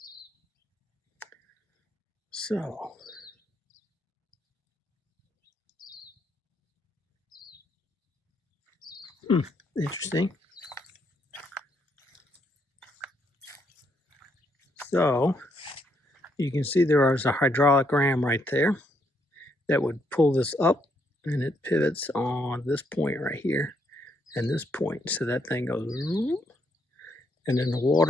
So interesting. So you can see there is a hydraulic ram right there that would pull this up, and it pivots on this point right here and this point. So that thing goes, and then the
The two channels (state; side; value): normal; both; correlation 0.74